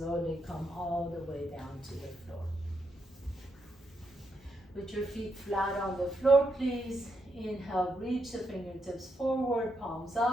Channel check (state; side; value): normal; both; correlation 0.80